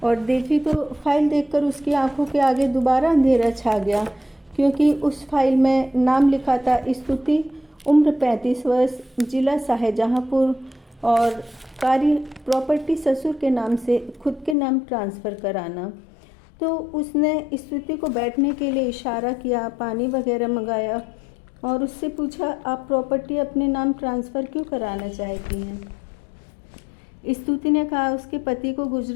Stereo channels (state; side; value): drops out; right; at 14.6 s